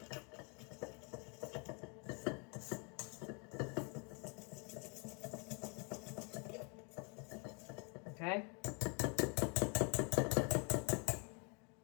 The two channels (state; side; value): quieter; right; 35.1 dB